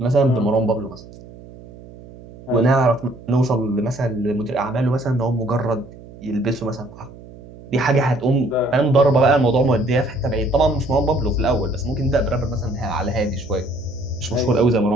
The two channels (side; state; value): right; noise; hum, 19 dB below the sound